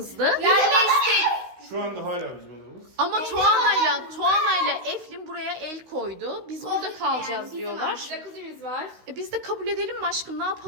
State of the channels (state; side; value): late; left; 16 ms